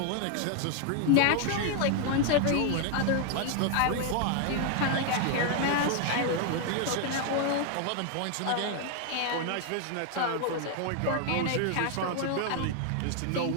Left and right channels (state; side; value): different; both; correlation 0.00